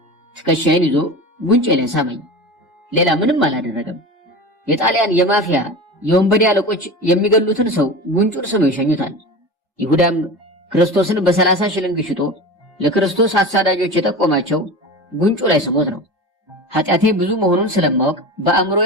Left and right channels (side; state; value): both; normal; correlation 0.29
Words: ትከሻዬን ይዞ ጉንጬ ላይ ሳመኝ። ሌላ ምንም አላደረገም። የጣሊያን የማፊያ የወንበዴ አለቆች የሚገሉትን ሰው ጉንጩን ስመው ይሸኙታል። ይሁዳም ክርስቶስን በ30 ሽልንግ ሽጦ ለክርስቶስ አሳዳጆች የጠቆማቸው ጉንጩ ላይ ስሞት ነው። ኃጢአቴ ብዙ መሆኑን ስለማወቅ